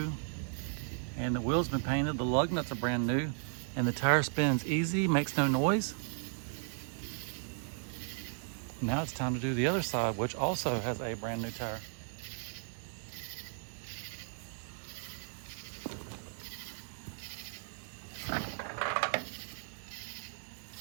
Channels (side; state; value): left; silent; digital silence